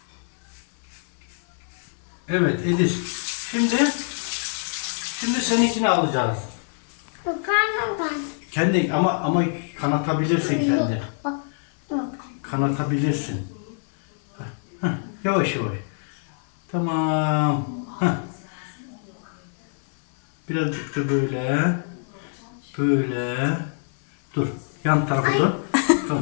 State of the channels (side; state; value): right; silent; 58 dB below the other